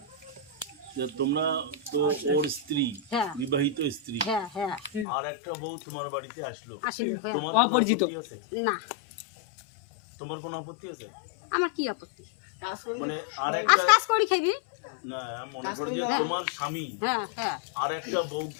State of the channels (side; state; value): right; drops out; at 5.1 s